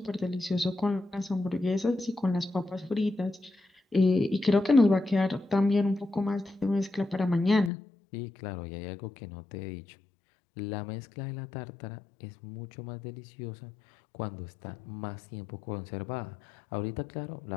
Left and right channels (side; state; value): right; drops out; at 7.7 s